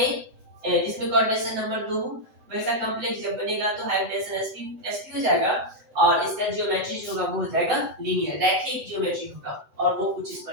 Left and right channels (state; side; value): late; left; 8.0 ms